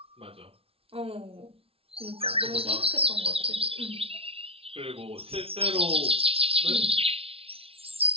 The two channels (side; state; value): left; late; 0.27 ms